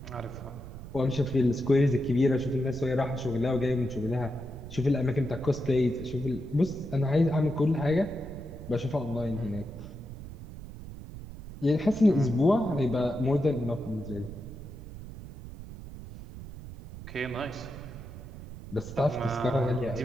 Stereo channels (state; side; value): noise; right; rumble, 12 dB below the sound